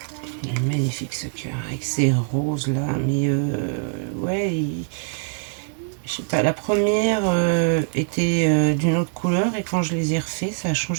Magnifique ce cœur avec ces roses là, mais ouais, je sais pas, la première était d'une autre couleur et quand je les ai refait, ça a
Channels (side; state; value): left; silent; 61 dB below the other